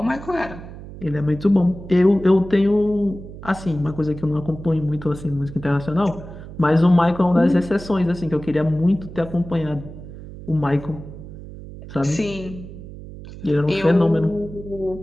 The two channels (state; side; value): noise; right; hum, 14 dB below the sound